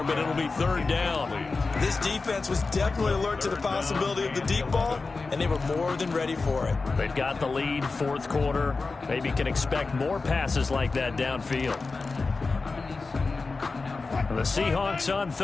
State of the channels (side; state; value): right; quieter; 4.0 dB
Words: but it'll be 3rd down. This defense was definitely alert to the possibility of the deep ball, and they were more than ready for it. They've got the lead, 4th quarter. Maybe can expect more passes like that downfield. The Seahawks on